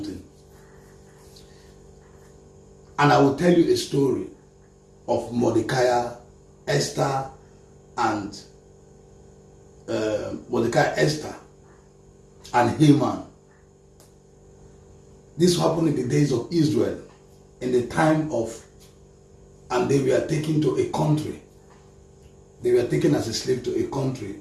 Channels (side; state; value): both; identical; correlation 1.00